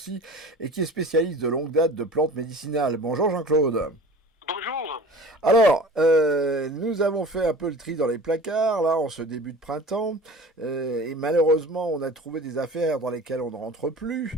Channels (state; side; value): normal; both; correlation 0.40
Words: et qui est spécialiste de longue date de plantes médicinales. Bonjour Jean-Claude. Bonjour. Alors, nous avons fait un peu le tri dans les placards, là, en ce début de printemps, et malheureusement, on a trouvé des affaires dans lesquelles on ne rentre plus.